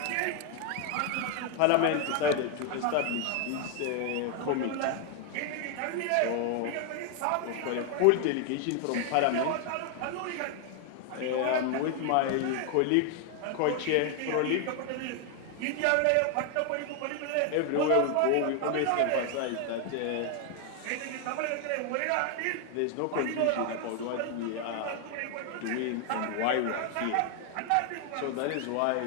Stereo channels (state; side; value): different; both; correlation 0.00